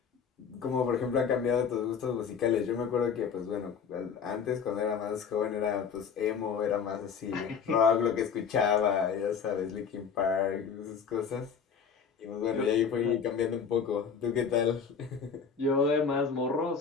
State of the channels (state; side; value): quieter; right; 6.5 dB